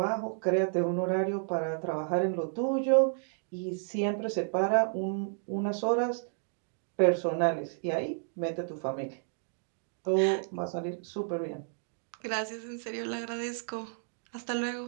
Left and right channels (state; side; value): silent; left; digital silence